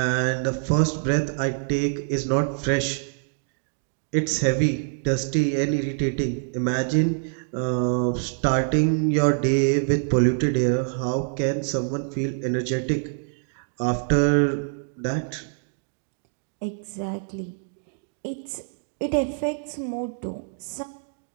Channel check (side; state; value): left; silent; digital silence